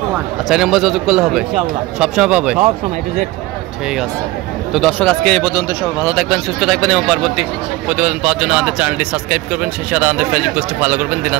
আচ্ছা এই নম্বর যোগাযোগ করলে হবে? ইনশাআল্লাহ সবসময় পাবে? সব সময় টু জেড। ঠিক আছে। তো দর্শক আজকে এই পর্যন্ত, সবাই ভালো থাকবেন সুস্থ থাকবেন এবং পরবর্তী প্রতিবেদন পাওয়ার জন্য আমাদের চ্যানেলটি সাবস্ক্রাইব করবেন, সেই সাথে আমাদের ফেসবুক পেজটি ফলো করবেন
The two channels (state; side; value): quieter; left; 19.3 dB